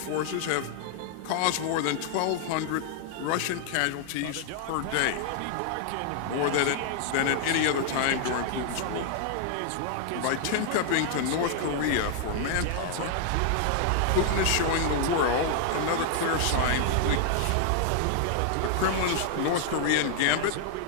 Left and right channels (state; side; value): different; both; correlation 0.00